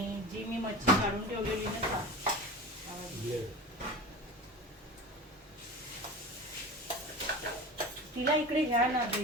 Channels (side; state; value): both; normal; correlation 0.33